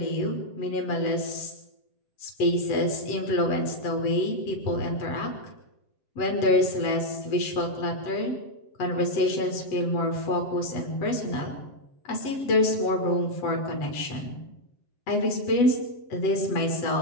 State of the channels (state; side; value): late; right; 7.6 ms